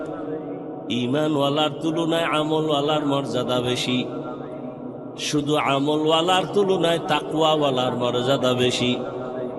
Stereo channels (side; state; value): both; identical; correlation 1.00